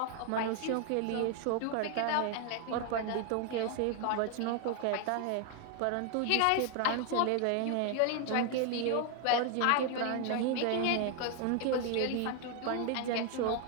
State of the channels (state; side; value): different; both; correlation 0.01